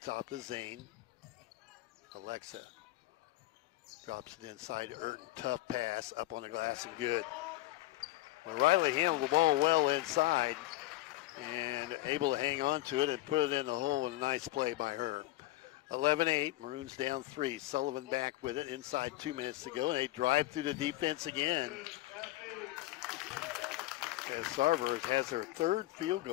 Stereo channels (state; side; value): quieter; right; 17.3 dB